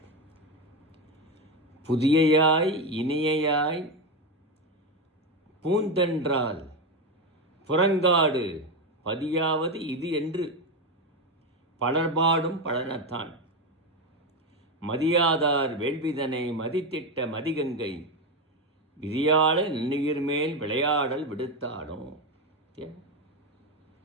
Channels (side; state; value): both; normal; correlation 0.13